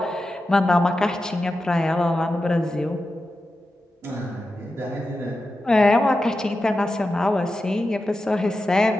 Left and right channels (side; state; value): both; normal; correlation 0.91